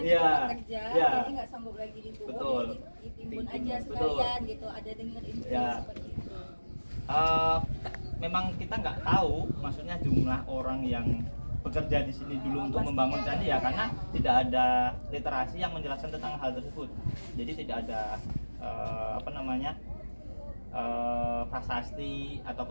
jadi nggak sanggup lagi dikubur, betul. Ditimbun aja sekalian gitu. Ada dengar info seperti itu. Memang kita nggak tahu, maksudnya jumlah orang yang bekerja di sini dulu untuk membangun candi ya, karena tidak ada literasi yang menjelaskan tentang hal tersebut. Jadi tidak ada prasasti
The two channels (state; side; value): inverted; both; correlation -1.00